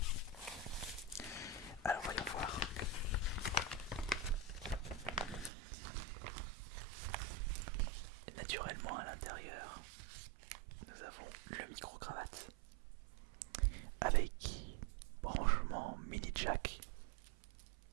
Alors voyons voir. Et naturellement à l'intérieur, nous avons le micro-cravate avec branchement mini jack.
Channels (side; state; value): left; drops out; at 5.5 s